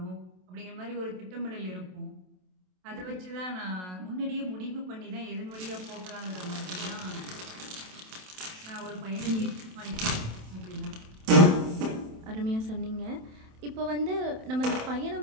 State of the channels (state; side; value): late; left; 27 ms